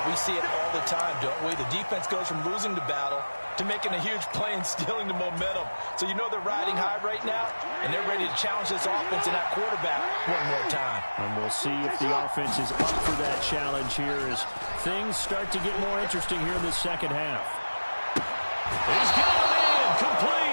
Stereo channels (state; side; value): inverted; both; correlation -1.00